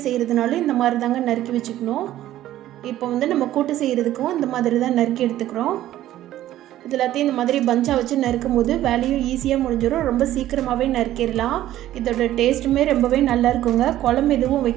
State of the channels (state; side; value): quieter; left; 13.6 dB